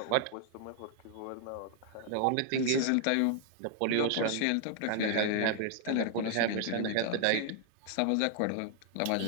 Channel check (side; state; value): both; different; correlation 0.00